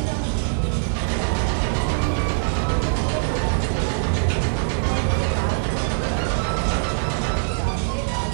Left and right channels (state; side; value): silent; left; digital silence